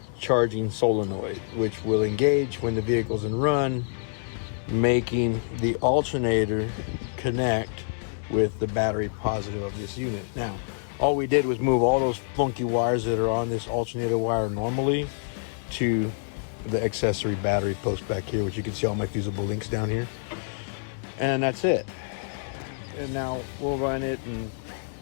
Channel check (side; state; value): right; silent; digital silence